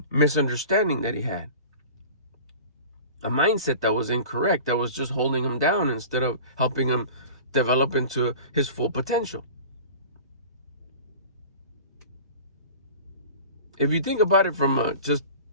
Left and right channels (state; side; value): inverted; both; correlation -0.39